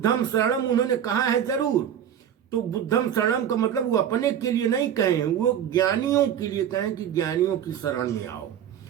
शरणम उन्होंने कहा है जरूर, तो बुद्धम शरणम का मतलब वो अपने के लिए नहीं कहे, वो ज्ञानियों के लिए कहें कि ज्ञानियों की शरण में आओ,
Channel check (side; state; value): left; quieter; 9.5 dB